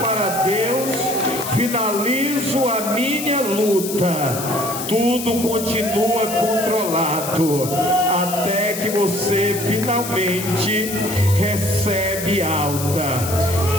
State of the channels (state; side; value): noise; left; hiss, 7 dB below the sound